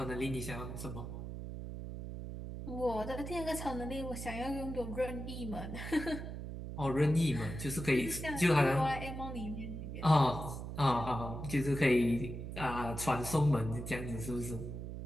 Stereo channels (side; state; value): right; noise; hum, 7 dB below the sound